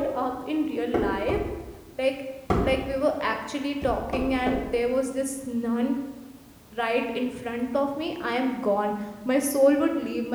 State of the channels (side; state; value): both; identical; correlation 1.00